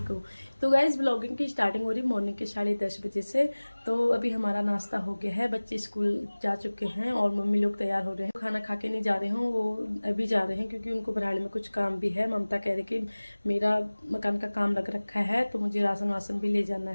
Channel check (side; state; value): both; inverted; correlation -1.00